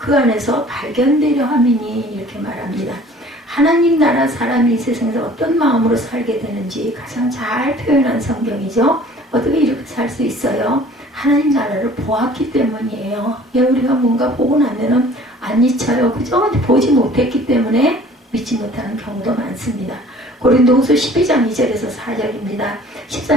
안에서 발견되려 함이니 이렇게 말합니다. 하나님 나라 사람이 이 세상에서 어떤 마음으로 살게 되는지 가장 잘 표현한 성경이죠. 어떻게 이렇게 살 수 있어요? 하나님 나라를 보았기 때문이에요. 우리가 뭔가 보고 나면은 안 잊혀요. 그죠? 보지 못했기 때문에 믿지 못하는 경우도 많습니다. 고린도후서 12장 2절에서 4절입니다.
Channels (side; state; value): both; normal; correlation 0.50